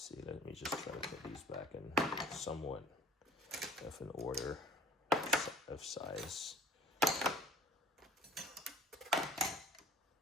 let me just try to put these back in somewhat of an order of size.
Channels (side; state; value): both; normal; correlation 0.49